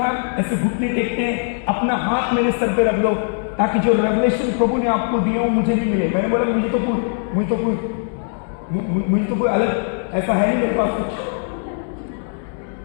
ऐसे घुटने टेकते हैं, अपना हाथ मेरे सर पे रख लो ताकि जो रेवलेशन प्रभु ने आपको दिया हो मुझे नहीं मिले। मैंने बोला मुझे तो कोई अलग ऐसा है नहीं मेरे पास कुछ।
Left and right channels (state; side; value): silent; right; digital silence